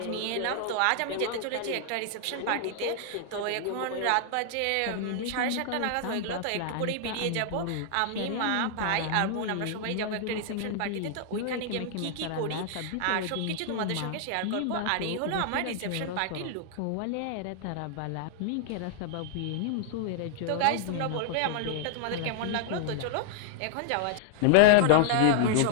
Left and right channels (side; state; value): both; different; correlation -0.01